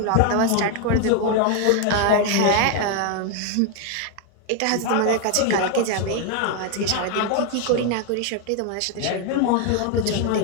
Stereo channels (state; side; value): different; both; correlation 0.01